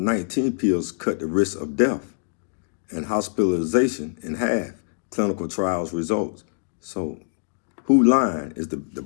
pills cut the risk of death and hospitalization in half. Clinical trials results. So who lying? Is the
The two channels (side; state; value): right; silent; digital silence